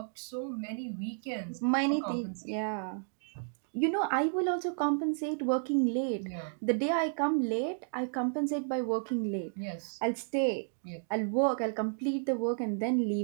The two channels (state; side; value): silent; left; digital silence